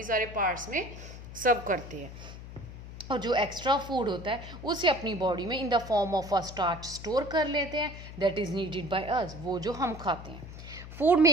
सारे पार्ट्स में सर्व करते हैं और जो एक्स्ट्रा फूड होता है उसे अपनी बॉडी में in the form of a starch store कर लेते हैं. That is needed by us, वो जो हम खाते हैं. Food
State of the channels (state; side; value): noise; left; hum, 13 dB below the sound